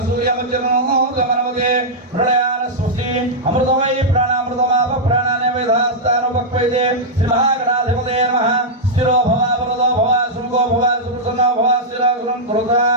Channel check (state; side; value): normal; both; correlation -0.07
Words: गमनवते प्रलयान स्वस्ति अमृतमयी प्राणामृतमाप प्राणाने वेदास्तानुपक्वैते श्रीमहागणाधिपते नमः स्थिरो भव वरदो भव सुमुखो भव सुप्रसन्नो भव स्थिरं